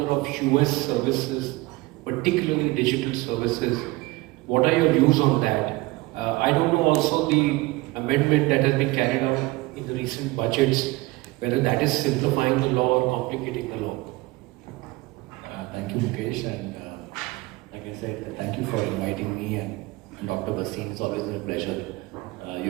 of US services, particularly digital services, what are your views on that? I don't know also the amendment that has been carried out in the recent budgets, whether that is simplifying the law or complicating the law. Thank you, Mukesh, and like I said, thank you for inviting me and Dr. Basin. It's always been a pleasure.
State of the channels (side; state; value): left; quieter; 21.7 dB